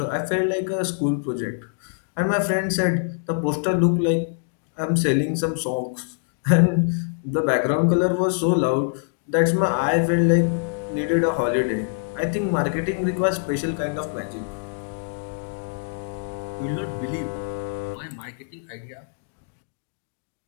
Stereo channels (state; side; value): silent; right; digital silence